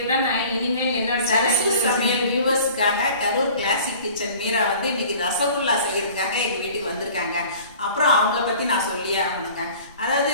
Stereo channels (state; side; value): inverted; both; correlation -0.46